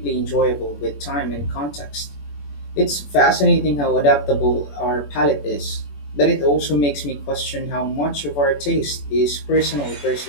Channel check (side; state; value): right; late; 21 ms